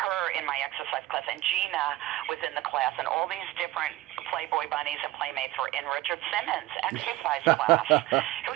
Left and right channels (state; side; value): quieter; left; 17.1 dB